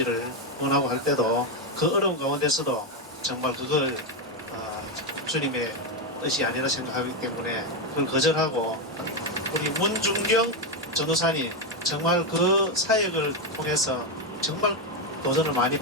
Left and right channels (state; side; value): normal; both; correlation 0.06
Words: 원하고 할 때도 그 어려운 가운데서도 정말 그걸 주님의 뜻이 아니라 생각하기 때문에 그걸 거절하고 우리 문중경 전도사님 정말 그 사역을 통해서 정말 도전을 많이